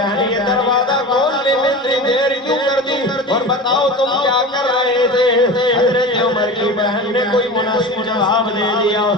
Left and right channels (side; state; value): both; normal; correlation 0.31